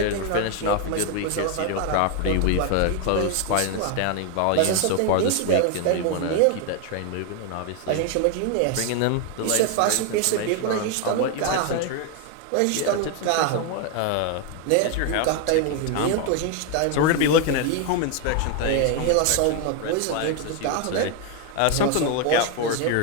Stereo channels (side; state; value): both; different; correlation 0.01